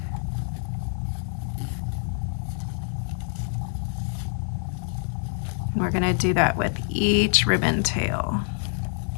We're going to do that with each ribbon tail.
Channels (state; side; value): silent; right; 61 dB below the other